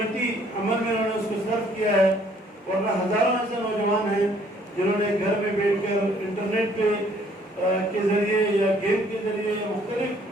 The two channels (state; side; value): normal; both; correlation 0.62